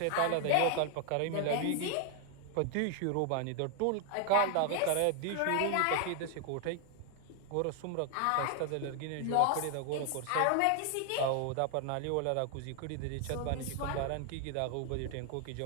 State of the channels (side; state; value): both; different; correlation 0.00